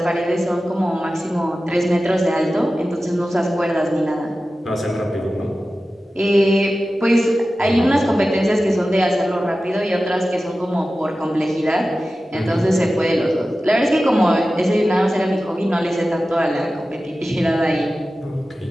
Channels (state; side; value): normal; both; correlation 0.95